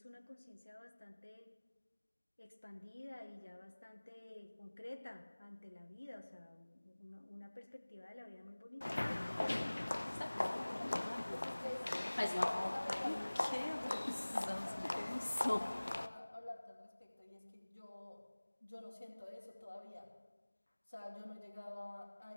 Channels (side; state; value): both; inverted; correlation -1.00